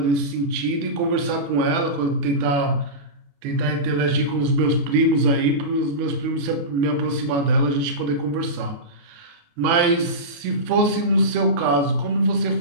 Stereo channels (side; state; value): left; late; 28 ms